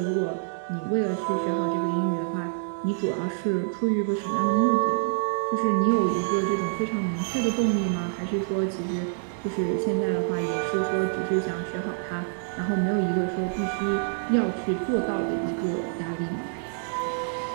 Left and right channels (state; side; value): silent; left; digital silence